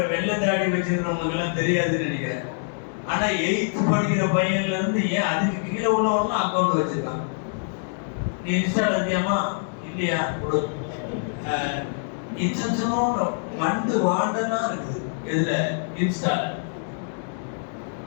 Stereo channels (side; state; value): right; silent; digital silence